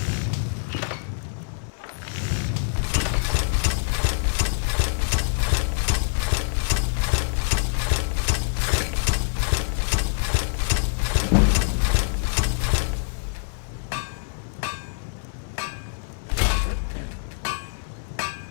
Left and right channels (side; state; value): right; silent; 57 dB below the other